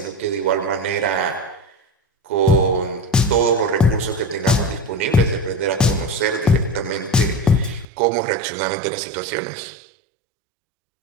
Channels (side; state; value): left; drops out; at 7.9 s